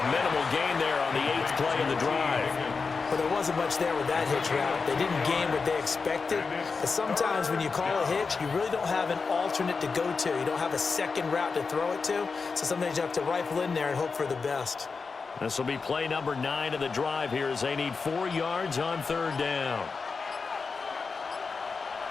minimal gain there on the 8th play of the drive. Well, there wasn't much there with that hitch route. They didn't gain what they expected. But sometimes when you call a hitch, you really don't have an alternate to go to. You don't have a second route to throw it to. So sometimes you have to rifle in there and hope for the best. This will be play number 9 of the drive here as they need 4 yards on 3rd down.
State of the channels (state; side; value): quieter; right; 4.8 dB